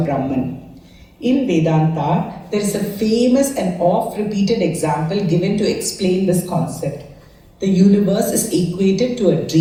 Brahman. In Vedanta, there is a famous and oft-repeated example given to explain this concept. The universe is equated to a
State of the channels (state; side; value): identical; both; correlation 1.00